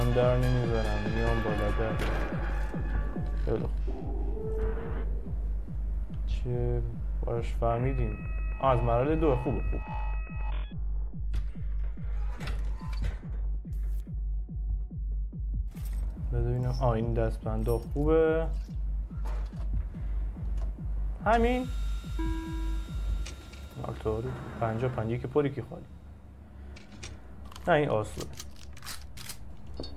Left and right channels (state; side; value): identical; both; correlation 1.00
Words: در نمیذارم میام بالا در. خیلی خوب چه باش فهمیدیم. از مرحله 2 خوبه. خوب ببینم. این دستبنده خوبه. همین آلتوری 50 که پری که خالی. نه این آسوده.